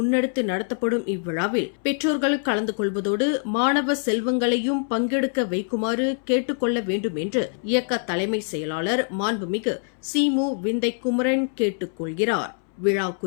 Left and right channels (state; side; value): silent; right; 62 dB below the other